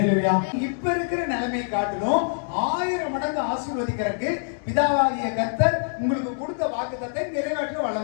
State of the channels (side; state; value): right; silent; digital silence